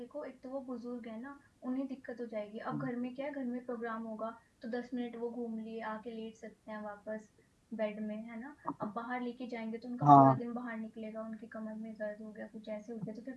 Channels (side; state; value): both; identical; correlation 1.00